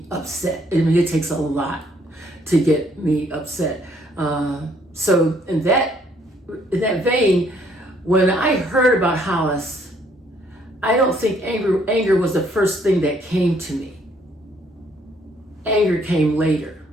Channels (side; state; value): both; normal; correlation 0.66